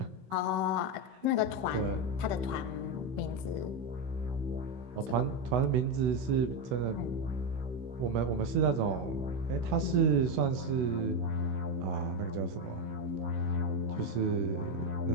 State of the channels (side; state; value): left; late; 16 ms